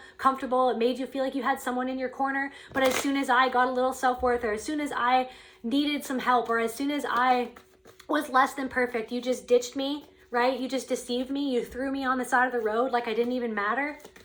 comfortable. It made you feel like you had someone in your corner. But as soon as I got a little self-worth, or as soon as I needed some help, or as soon as I was less than perfect, you just ditched me. Right? You just deceived me. You threw me on the side of the road like I didn't even matter.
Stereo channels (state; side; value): identical; both; correlation 1.00